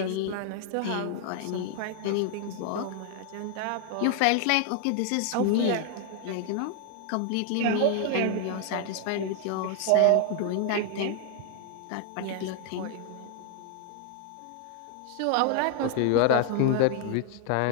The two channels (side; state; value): both; different; correlation 0.00